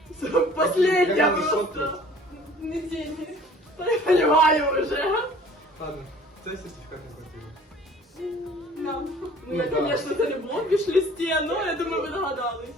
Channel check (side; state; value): both; normal; correlation 0.51